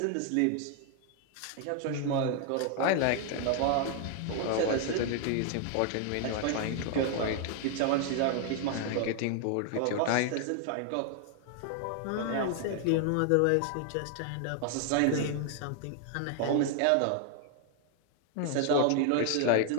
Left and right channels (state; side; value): different; both; correlation 0.00